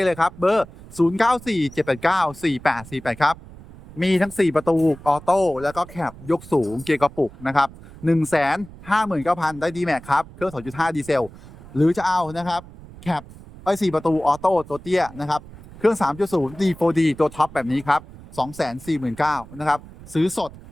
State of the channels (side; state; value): right; noise; rumble, 18 dB below the sound